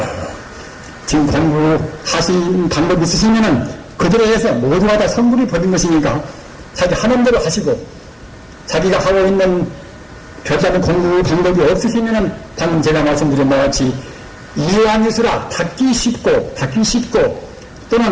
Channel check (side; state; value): both; identical; correlation 1.00